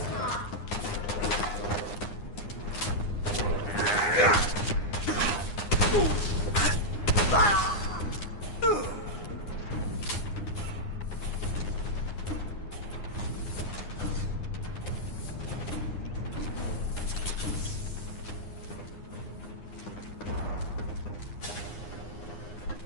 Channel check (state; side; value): late; right; 9.8 ms